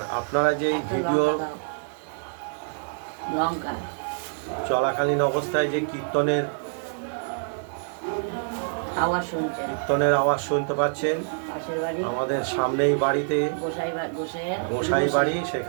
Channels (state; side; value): silent; left; digital silence